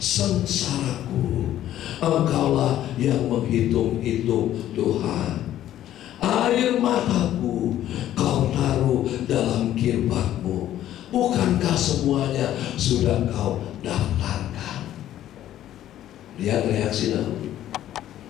sengsaraku, Engkaulah yang menghitung-hitung Tuhan. Air mataku Kau taruh dalam kirbatmu. Bukankah semuanya sudah Kau daftarkan? Lihat reaksi Daud.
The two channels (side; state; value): right; quieter; 12.4 dB